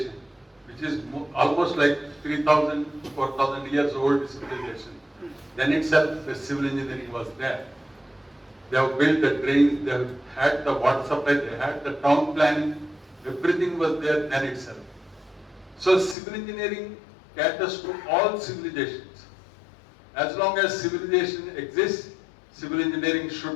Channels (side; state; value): right; drops out; at 16.2 s